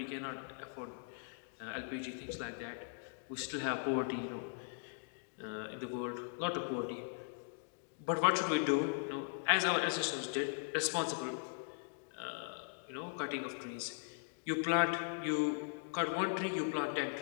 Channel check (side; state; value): right; silent; digital silence